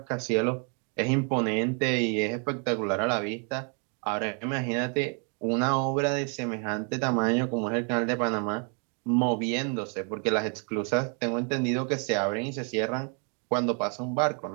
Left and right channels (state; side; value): quieter; left; 39.6 dB